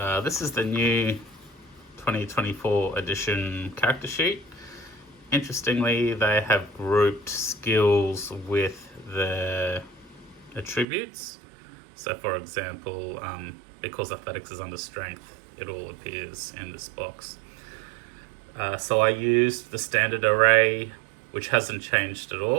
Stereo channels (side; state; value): left; drops out; at 10.9 s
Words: This is the new 2024 edition character sheet. Interestingly, they have grouped skills with the attributes. So for example, because athletics is under strength, it all appears in this box. So I used the standard array, which hasn't changed at